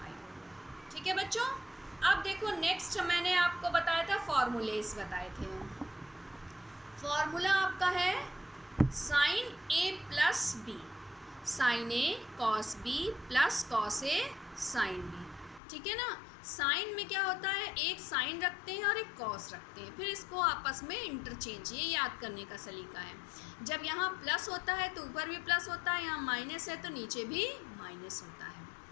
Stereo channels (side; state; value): right; drops out; at 15.6 s